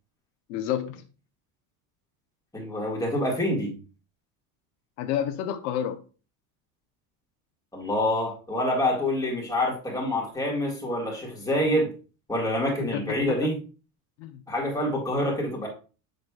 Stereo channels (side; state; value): both; normal; correlation 0.35